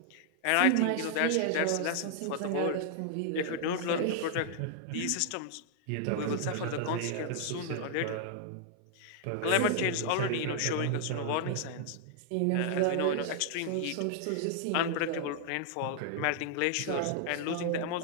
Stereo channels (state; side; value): different; both; correlation 0.00